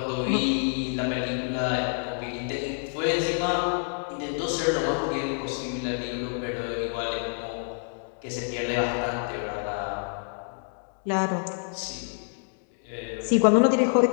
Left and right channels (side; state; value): right; silent; 60 dB below the other